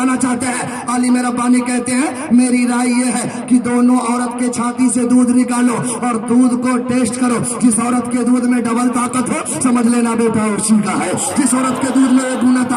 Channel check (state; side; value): identical; both; correlation 1.00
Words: चाहते हैं। अली मेरा पानी कहते हैं मेरी राय ये है कि दोनों औरत के छाती से दूध निकालो और दूध को टेस्ट करो। जिस औरत के दूध में डबल ताकत हो समझ लेना बेटा उसी का है, जिस औरत के दूध में 1 गुना